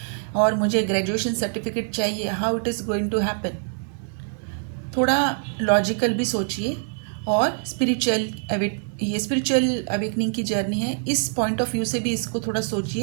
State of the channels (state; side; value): silent; left; digital silence